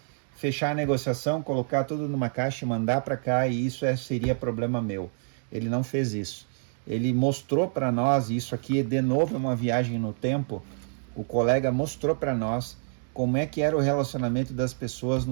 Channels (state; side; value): silent; left; digital silence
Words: fechar a negociação, colocar tudo numa caixa e mandar para cá, e isso seria problema meu. Ele não fez isso. Ele mostrou para nós, e isso aqui de novo é uma viagem no tempo, o colega mostrou para nós como é que era o relacionamento das pessoas